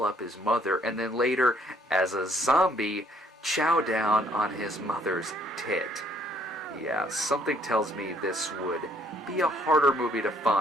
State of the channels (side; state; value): both; normal; correlation 0.65